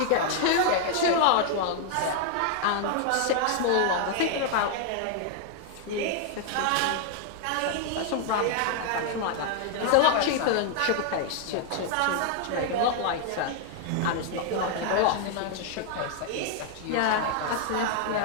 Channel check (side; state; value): both; different; correlation 0.00